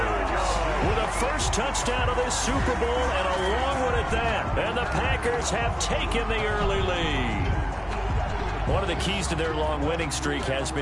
With a first touchdown of this Super Bowl and a long one at that. And the Packers have taken the early lead. One of the keys to their long winning streak has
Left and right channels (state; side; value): identical; both; correlation 1.00